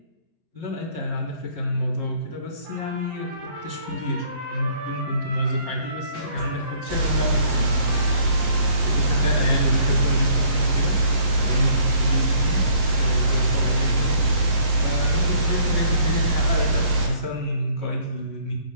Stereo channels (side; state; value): left; late; 11 ms